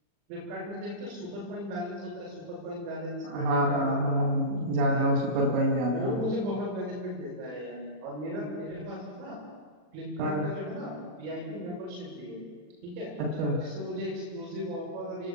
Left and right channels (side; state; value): left; late; 40 ms